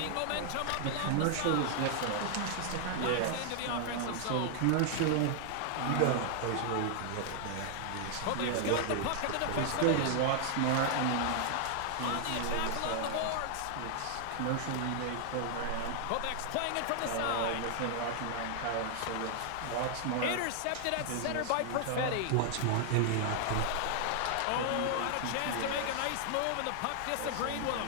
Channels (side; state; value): both; different; correlation 0.00